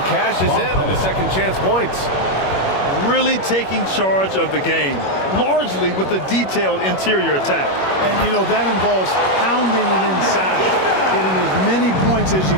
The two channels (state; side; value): late; right; 21 ms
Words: cashes in on the second chance points. Really taking charge of the game, largely with a detailed interior attack. And, you know, that involves pounding it inside, getting as many points as you